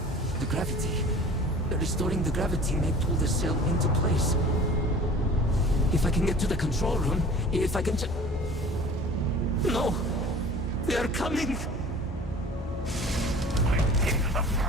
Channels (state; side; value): normal; both; correlation 0.43